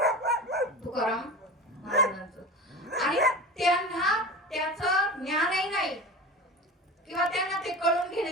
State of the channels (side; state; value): both; normal; correlation 0.31